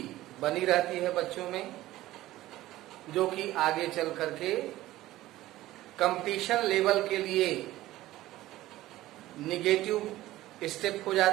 बनी रहती है बच्चों में, जो कि आगे चल करके कंपटीशन लेवल के लिए निगेटिव स्टेप हो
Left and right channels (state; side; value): quieter; left; 16.0 dB